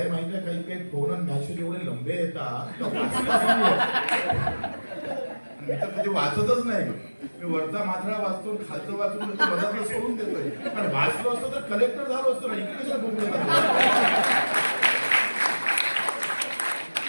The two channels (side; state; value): both; inverted; correlation -1.00